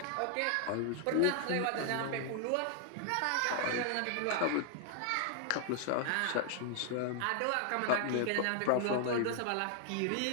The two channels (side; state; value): both; different; correlation 0.00